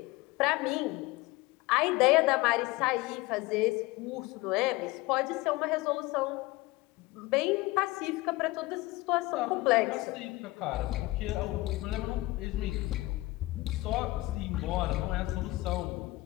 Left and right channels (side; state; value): right; quieter; 20.4 dB